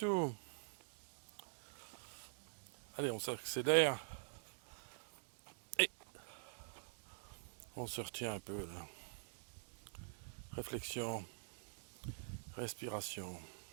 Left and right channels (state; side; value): silent; left; digital silence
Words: Allez, on s'accélère et on se retient un peu là. Réflexion, respiration.